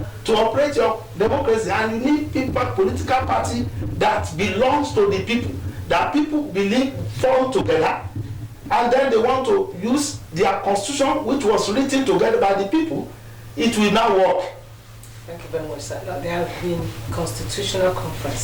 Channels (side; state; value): both; identical; correlation 1.00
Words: to operate your democracy, and you need people, political party that belongs to the people, that people believe form together, and then they want to use their constitution, which was written together by the people. It will now work. Thank you very much, sir. Now, there have been constitutional